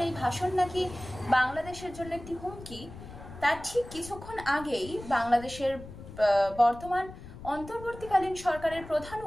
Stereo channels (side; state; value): left; noise; rumble, 14 dB below the sound